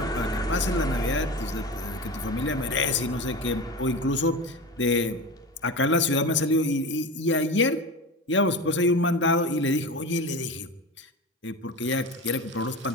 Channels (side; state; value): both; normal; correlation 0.28